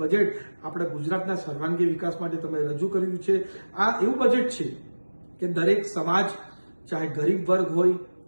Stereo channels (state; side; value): inverted; both; correlation -1.00